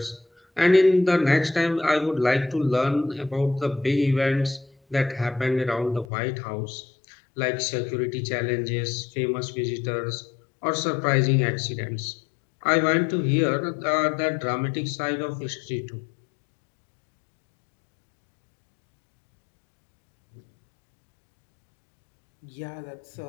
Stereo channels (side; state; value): right; drops out; at 6.1 s